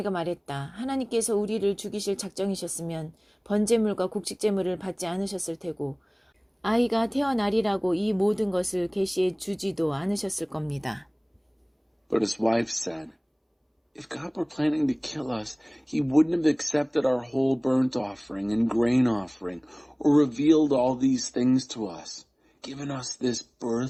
말했다. 하나님께서 우리를 죽이실 작정이셨으면 번제물과 곡식제물을 받지 않으셨을 테고 아이가 태어나리라고 이 모든 것을 계시해 주지도 않으셨을 겁니다. But his wife said, If God were planning to kill us, he wouldn't have accepted our whole burnt offering and grain offering, or revealed all these things to us, given us this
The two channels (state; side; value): identical; both; correlation 1.00